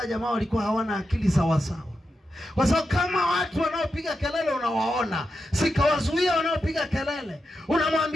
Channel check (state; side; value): normal; both; correlation 0.87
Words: jamaa walikuwa hawana akili sawa sawa. Kwa sababu kama watu wanaopiga kelele unawaona, sikawazuia wanaopiga kelele,